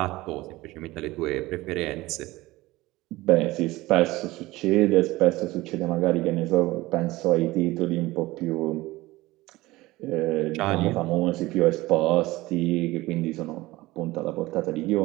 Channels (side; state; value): left; quieter; 19.2 dB